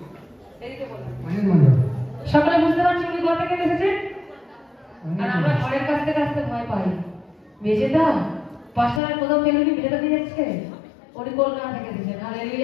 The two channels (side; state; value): right; drops out; at 9.0 s